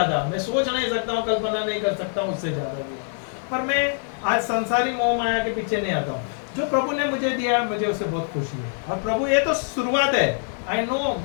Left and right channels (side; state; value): right; silent; 60 dB below the other